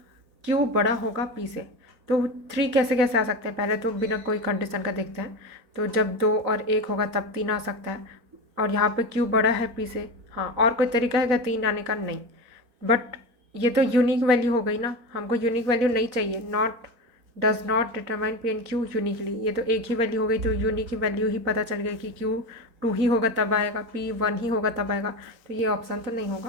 Q बड़ा होगा P से। तो 3 कैसे कैसे आ सकते हैं, पहले तो बिना कोई कंडीशन का देखते हैं। तो जब 2 और 1 होगा तब 3 आ सकता है, और यहाँ पे Q बड़ा है P से। हाँ, और कोई तरीका है क्या 3 आने का, नहीं। बट ये तो यूनिक वैल्यू हो गई ना, हमको यूनिक वैल्यू नहीं चाहिए। Not does not determine P and Q uniquely, ये तो एक ही वैल्यू हो गई। तो यूनिक वैल्यू ही पता चल गई कि Q 2 ही होगा तब आएगा, P 1 ही होगा तब आएगा। तो ये ऑप्शन तो नहीं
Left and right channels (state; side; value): late; left; 4.0 ms